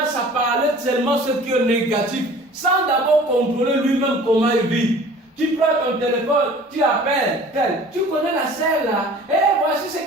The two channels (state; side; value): normal; both; correlation 0.46